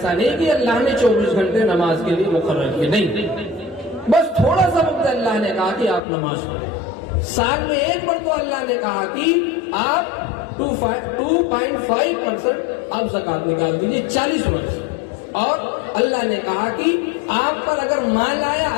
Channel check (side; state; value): right; drops out; at 6.0 s